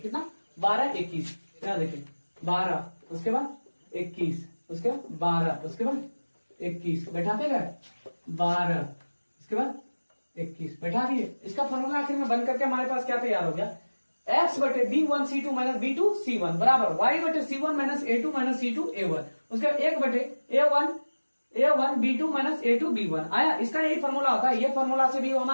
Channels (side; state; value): both; inverted; correlation -1.00